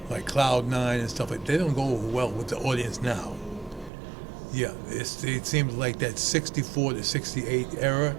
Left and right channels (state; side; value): drops out; left; at 3.9 s